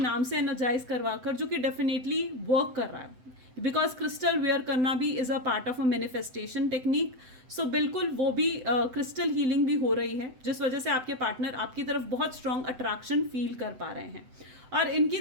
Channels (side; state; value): left; late; 7.8 ms